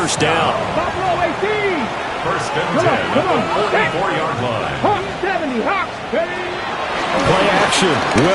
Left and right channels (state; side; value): identical; both; correlation 1.00